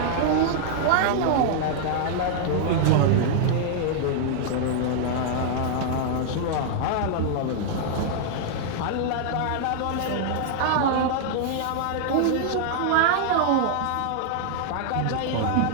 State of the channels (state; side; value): different; both; correlation -0.01